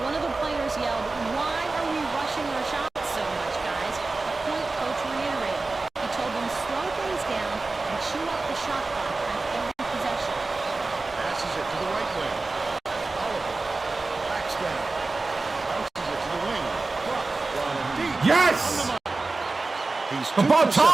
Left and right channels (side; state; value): left; quieter; 3.5 dB